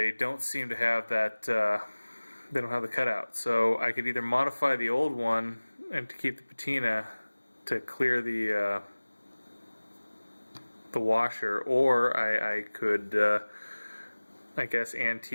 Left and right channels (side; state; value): both; inverted; correlation -1.00